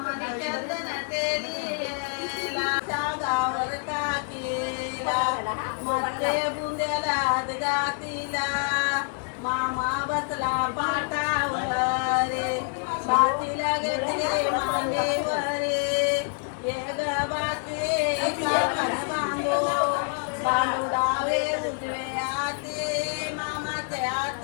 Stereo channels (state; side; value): silent; right; 58 dB below the other